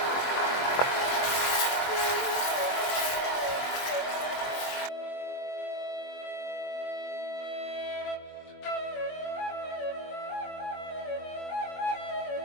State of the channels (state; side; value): late; right; 23 ms